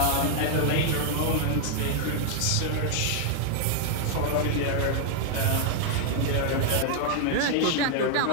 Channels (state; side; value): different; both; correlation -0.01